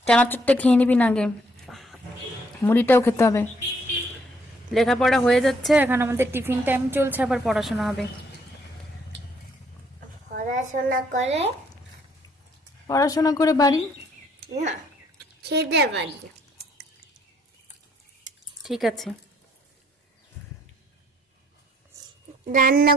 চানাচুরটা খেয়ে নিবি না আগে, মুড়িটাও খেতে হবে। লেখাপড়া হয়ে যাচ্ছে, এখন আমাদের টিফিন টাইম চলছে, আবার পড়াশোনা হবে। পড়াশোনা করে বাড়ি না, খেতে পারি। ঠিক আছে, রান্না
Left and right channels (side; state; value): both; normal; correlation 0.67